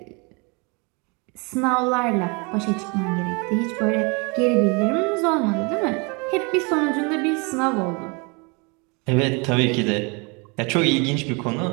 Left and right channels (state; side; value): quieter; left; 30.7 dB